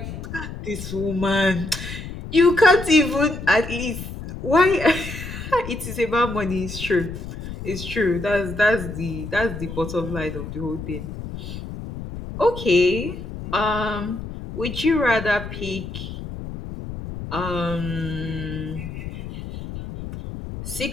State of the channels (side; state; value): left; noise; rumble, 9 dB below the sound